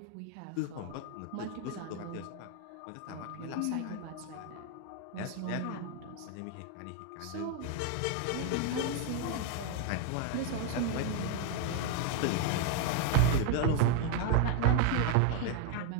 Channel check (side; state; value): both; different; correlation 0.01